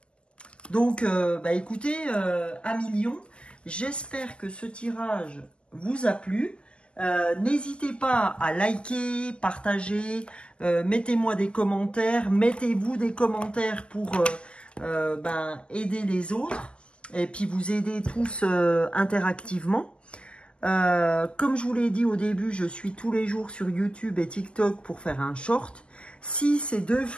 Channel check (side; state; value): right; late; 0.058 ms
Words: Donc, bah, écoutez, amis lions, j'espère que ce tirage vous a plu. N'hésitez pas à liker, partager, mettez-moi des commentaires, mettez-vous des commentaires pour aider les autres et puis vous aider tous interactivement. Comme je vous l'ai dit au début, je suis tous les jours sur YouTube et TikTok pour faire un short. Si ces deux